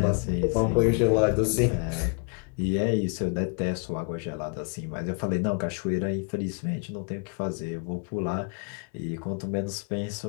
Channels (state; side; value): quieter; right; 38.0 dB